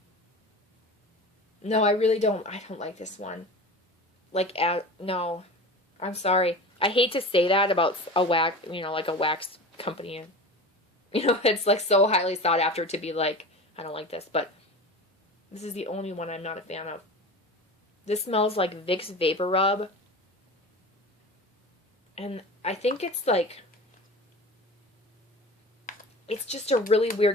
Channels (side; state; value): both; normal; correlation 0.33